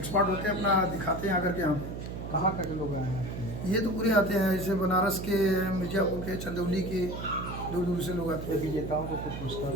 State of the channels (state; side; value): noise; right; hum, 7 dB below the sound